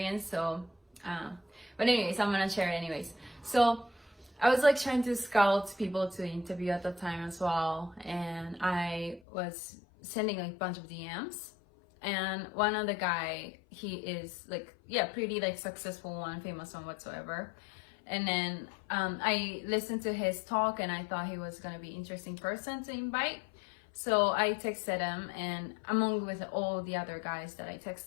So, but anyways, I'm gonna share it anyways. So I was like trying to scout people to interview at the time as well, and I was sending like a bunch of DMs, and one of the guy, he is like, yeah, pretty like successful one, famous one whatsoever. And then I listened to his talk and I thought he was gonna be interesting person to invite. So I texted him, and among with all the other guys that I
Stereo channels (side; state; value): right; drops out; at 9.2 s